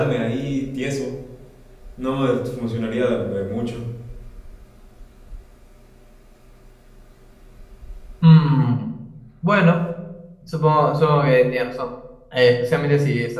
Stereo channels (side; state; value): both; identical; correlation 1.00